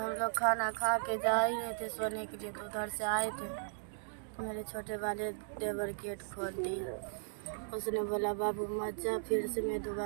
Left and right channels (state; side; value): silent; left; digital silence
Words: लोग खाना खा के जा ही रहे थे सोने के लिए, तो उधर से आए थे तो मेरे छोटे वाले देवर गेट खोल दिया। उसने बोला बाबू मत जा, फिर से मैं